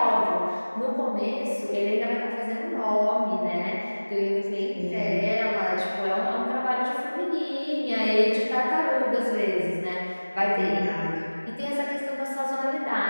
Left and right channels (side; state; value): both; inverted; correlation -1.00